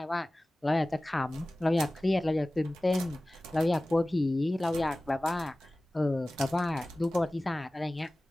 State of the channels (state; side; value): normal; both; correlation 0.97